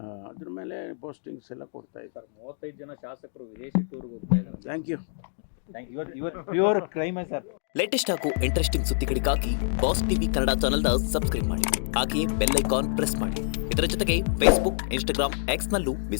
ಅದ್ರ ಮೇಲೆ ಪೋಸ್ಟಿಂಗ್ಸ್ ಎಲ್ಲ ಕೊಡ್ತಾ ಇದ್ದಾರೆ. 35 ಜನ ಶಾಸಕರು ವಿದೇಶಿ ಟೂರ್ಗೆ ಹೋಗ್ತಾ ಇದ್ದಾರೆ. Thank you. Pure crime sir. Latest ಹಾಗೂ ಇಂಟ್ರೆಸ್ಟಿಂಗ್ ಸುದ್ದಿಗಳಿಗಾಗಿ ಬಾಸ್ ಟಿವಿ ಕನ್ನಡ ಚಾನೆಲ್ನ ಸಬ್ಸ್ಕ್ರೈಬ್ ಮಾಡಿ, ಹಾಗೆಯೇ ಬೆಲ್ ಐಕಾನ್ ಪ್ರೆಸ್ ಮಾಡಿ. ಇದರ ಜೊತೆಗೆ Facebook, Instagram, X ನಲ್ಲೂ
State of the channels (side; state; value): right; silent; digital silence